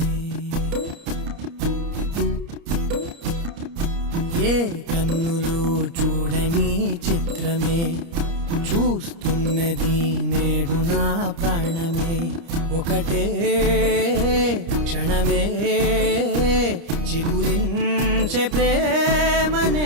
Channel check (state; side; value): late; left; 30 ms